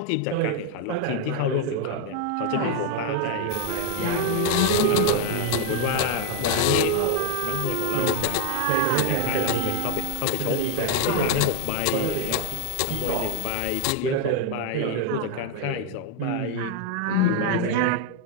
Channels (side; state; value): both; different; correlation 0.01